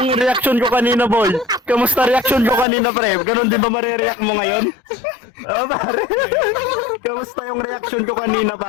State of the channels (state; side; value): drops out; right; at 2.7 s